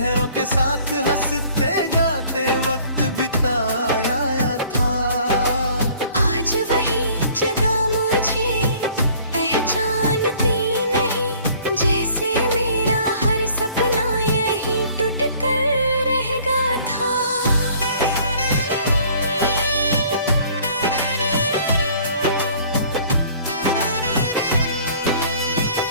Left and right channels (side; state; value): both; inverted; correlation -0.54